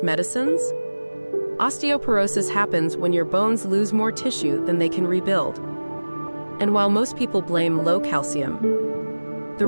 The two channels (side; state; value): both; inverted; correlation -1.00